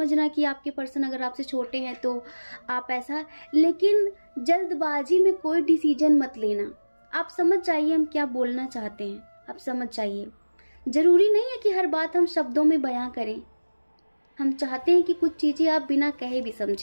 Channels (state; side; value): inverted; both; correlation -1.00